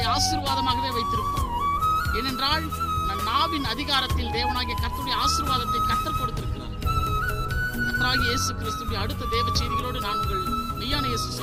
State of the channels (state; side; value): identical; both; correlation 1.00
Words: ஆசீர்வாதமாகவே வைத்திருப்பார். ஏனென்றால் நம் நாவின் அதிகாரத்தில் தேவனாகிய கர்த்தருடைய ஆசீர்வாதத்தை கர்த்தர் கொடுத்திருக்கிறார். கர்த்தராகிய இயேசு கிறிஸ்துவின் அடுத்த தேவ செய்திகளோடு நான் உங்கள் மெய்யான இயேசு